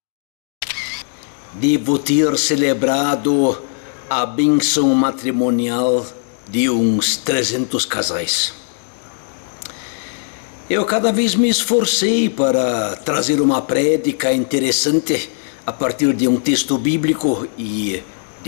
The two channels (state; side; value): silent; right; digital silence